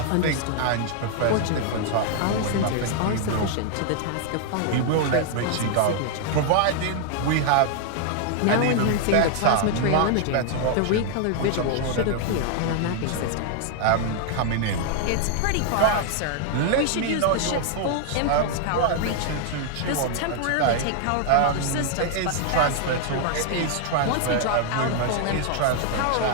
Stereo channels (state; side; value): different; both; correlation 0.00